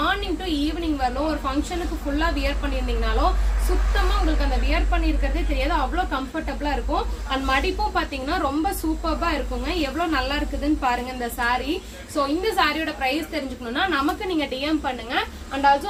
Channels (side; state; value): both; identical; correlation 1.00